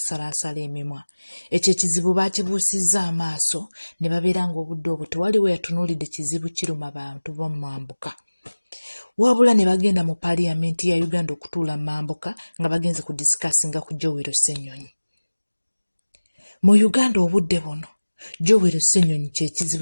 emimwa. Ekyo ekizibu baakibuusizza amaaso ne babeera ng'obudde obwo tewaliwo yatunuulidde kizibu kiruma bantu b'omu mambuka. Wabula ne bagenda mu Paaliyamenti ya Uganda okutuula mu mambuka nga bagenze ku disikasinga ku Joel Ssennyonyi. Mu Uganda obudde buno Joel Ssennyonyi kye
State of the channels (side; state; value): both; inverted; correlation -1.00